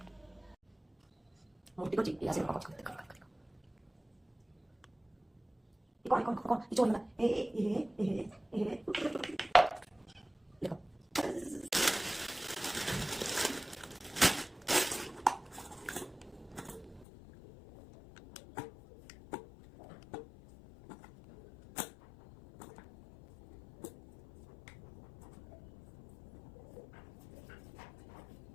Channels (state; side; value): drops out; right; at 17.1 s